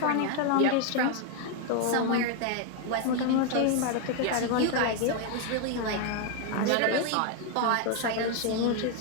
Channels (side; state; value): both; different; correlation 0.01